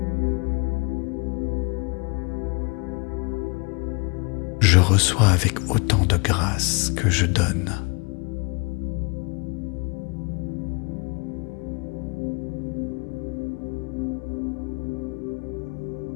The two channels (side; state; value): right; quieter; 31.8 dB